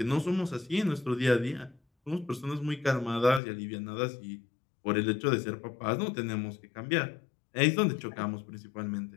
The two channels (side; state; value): right; drops out; at 3.4 s